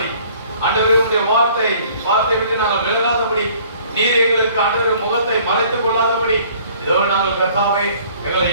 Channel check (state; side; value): inverted; both; correlation -0.55